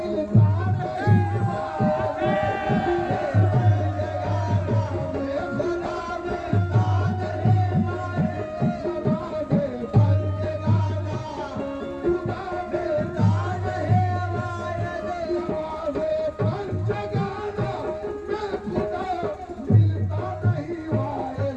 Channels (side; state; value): both; identical; correlation 1.00